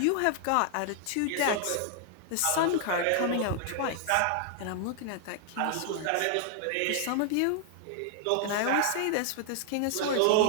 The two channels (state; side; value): different; both; correlation 0.00